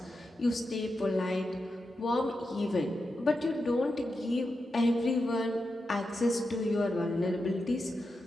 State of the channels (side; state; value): both; normal; correlation 0.88